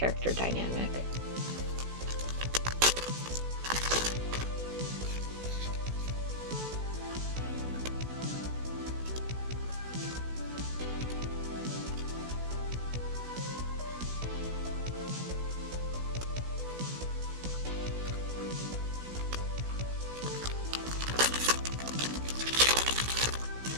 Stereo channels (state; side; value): late; left; 16 ms